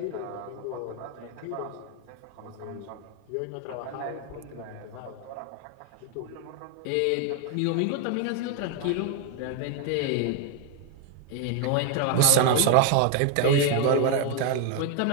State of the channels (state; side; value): different; both; correlation 0.01